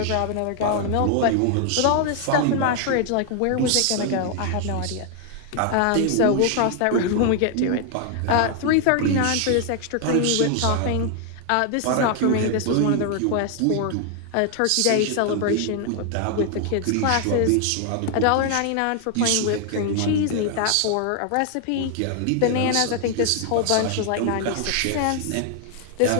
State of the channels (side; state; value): both; different; correlation 0.00